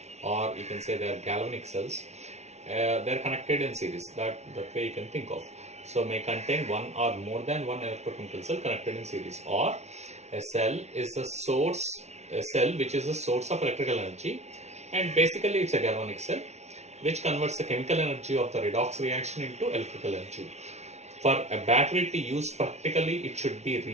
or you can say they are galvanic cells. They are connected in series. That way you can think of. So may contain one or more than one electrochemical cell connected in series, or a cell is a source, a cell which is a source of electrical energy, and basically it's a galvanic cell which converts the chemical energy of the redox reaction into electrical energy. For a battery to use practically, it should be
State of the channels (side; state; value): left; late; 0.32 ms